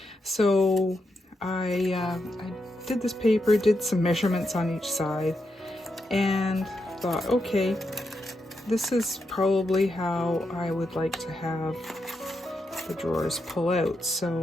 So I did this paper, did some measurements on each side, and thought, okay, this is probably how I would like to have the drawers pull out.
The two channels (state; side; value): normal; both; correlation 0.84